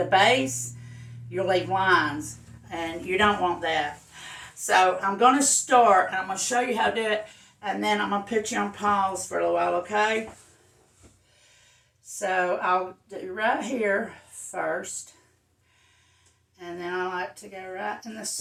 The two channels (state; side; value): identical; both; correlation 1.00